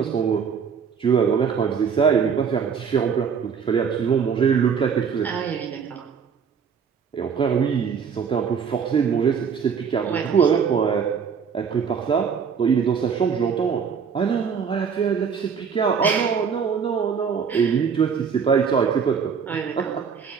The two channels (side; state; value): left; quieter; 6.6 dB